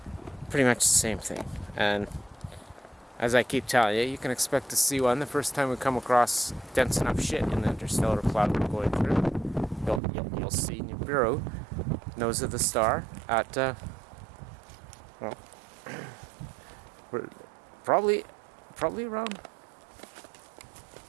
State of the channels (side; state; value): left; drops out; at 10.0 s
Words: pretty much the same thing. And as I keep telling you, you can expect to see one the first time we come across dense enough shit in the interstellar cloud we're going through. You'll see Nibiru, nose of the star, at well, we're probably around